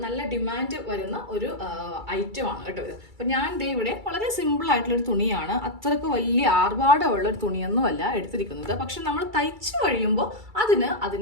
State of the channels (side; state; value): left; late; 2.3 ms